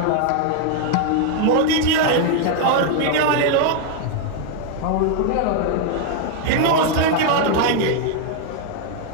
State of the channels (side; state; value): both; different; correlation 0.00